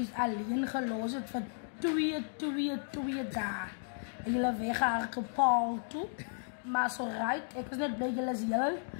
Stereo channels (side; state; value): right; silent; digital silence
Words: alleen gelos het vir 2 dae. En julle weggehardloop Paul toe. Maar so right, ek is net bly julle is heel.